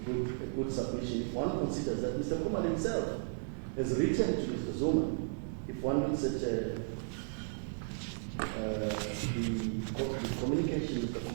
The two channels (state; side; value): silent; left; 55 dB below the other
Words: good submission if one considers that Mr. Khumalo himself has written to Mr. Zuma. If one looks at the communication Mr.